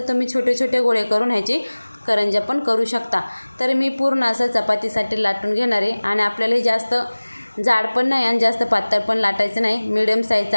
तुम्ही छोटे गोळे करून ह्याची करंज्या पण करू शकता. तर मी पूर्ण असं चपातीसाठी लाटून घेणार आहे. आणि आपल्याला हे जास्त जाड पण नाही आणि जास्त पातळ पण लाटायचं नाही, मिडियम साईजचं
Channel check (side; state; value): both; inverted; correlation -1.00